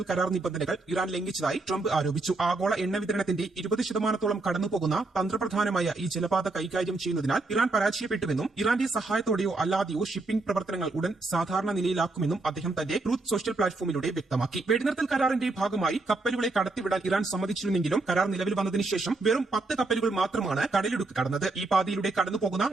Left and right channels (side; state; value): left; quieter; 3.3 dB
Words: കരാർ നിബന്ധനകൾ ഇറാൻ ലംഘിച്ചതായി ട്രംപ് ആരോപിച്ചു. ആഗോള എണ്ണ വിതരണത്തിന്റെ 20% കടന്നുപോകുന്ന തന്ത്രപ്രധാനമായ ഈ ജലപാത കൈകാര്യം ചെയ്യുന്നതിനാൽ ഇറാൻ പരാജയപ്പെട്ടുവെന്നും ഇറാന്റെ സഹായത്തോടെയോ അല്ലാതെയോ ഷിപ്പിംഗ് പ്രവർത്തനങ്ങൾ ഉടൻ സാധാരണ നിലയിലാക്കുമെന്നും അദ്ദേഹം തന്റെ ട്രൂത്ത് സോഷ്യൽ പ്ലാറ്റ്ഫോമിലൂടെ വ്യക്തമാക്കി. വെടിനിർത്തൽ കരാറിന്റെ ഭാഗമായി കപ്പലുകളെ കടത്തിവിടാൻ ഇറാൻ സമ്മതിച്ചിരുന്നെങ്കിലും കരാർ നിലവിൽ വന്നതിന് ശേഷം വെറും 10 കപ്പലുകൾ മാത്രമാണ് കടലിടുക്ക് കടന്നത്. ഈ പാതയിലൂടെ കടന്നുപോകുന്ന